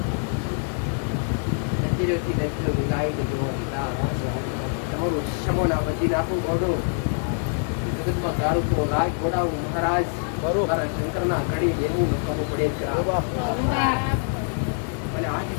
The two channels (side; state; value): right; silent; 56 dB below the other